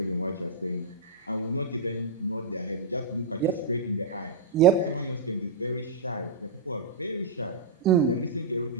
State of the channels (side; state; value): left; quieter; 3.7 dB